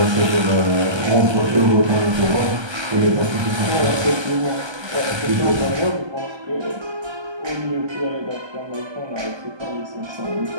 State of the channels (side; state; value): left; late; 1.3 ms